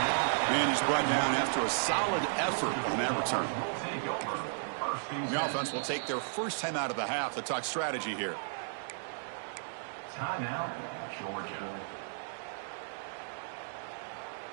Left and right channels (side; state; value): left; silent; digital silence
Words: And he's brought down after a solid effort on that return. The offense will take their first time out of the half to talk strategy here. Timeout, Georgia.